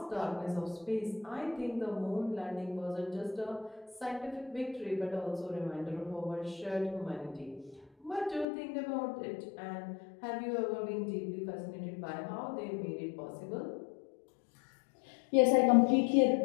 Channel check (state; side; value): drops out; right; at 8.5 s